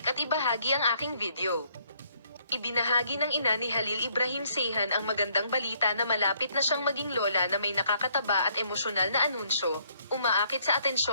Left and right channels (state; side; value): inverted; both; correlation -0.67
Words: at ibahagi ang aking video. Ibinahagi ng ina ni Halil Ibrahim Seyhan ang magandang balita na malapit na siyang maging lola na may nakakataba at emosyonal na anunsyo, umaakit sa